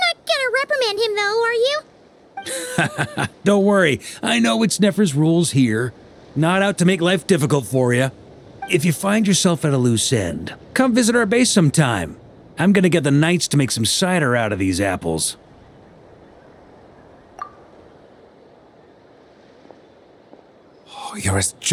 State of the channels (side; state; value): both; identical; correlation 1.00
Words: not gonna reprimand him though, are you? Don't worry, I know it's Nefer's rules here. Not out to make life difficult for you. If you find yourself at a loose end, come visit our base sometime. I'm gonna get the knights to make some cider out of these apples. Oh, you're as